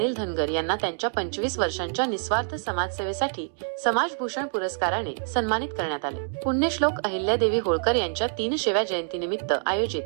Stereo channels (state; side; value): silent; left; digital silence